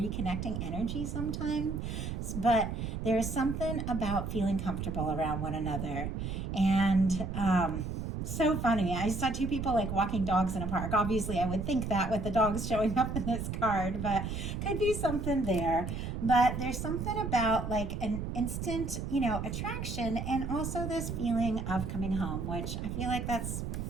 energy sometimes. But there is something about feeling comfortable around one another. And so funny. I saw two people like walking dogs in a park. Obviously, I would think that with the dogs showing up in this card, but could be something there. But there's something about like an instant, you know, attraction, and also this feeling of coming home, which I feel like that's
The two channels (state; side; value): noise; right; rumble, 4 dB below the sound